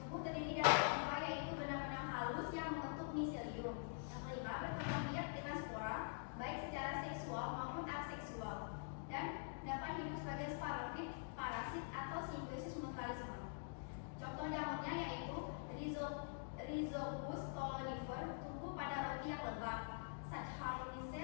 terdiri dari limfa, yaitu benang-benang halus yang membentuk miselium. Yang kelima, berkembang biak dengan spora, baik secara seksual maupun aseksual, dan dapat hidup sebagai sporofit, parasit, atau simbiosis mutualisme. Contoh jamurnya yaitu Rhizopus stolonifer, tumbuh pada roti yang lembab.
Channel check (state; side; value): silent; right; digital silence